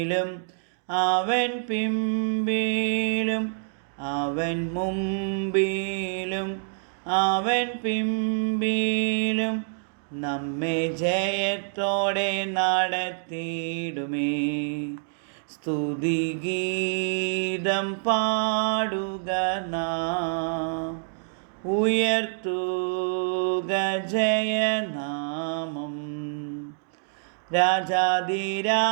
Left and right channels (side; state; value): left; silent; digital silence